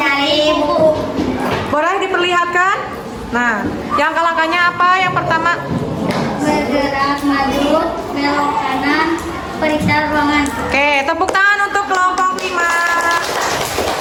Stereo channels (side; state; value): both; identical; correlation 1.00